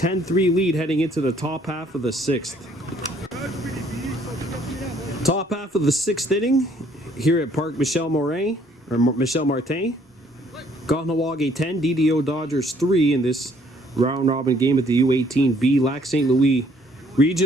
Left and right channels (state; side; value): normal; both; correlation 0.63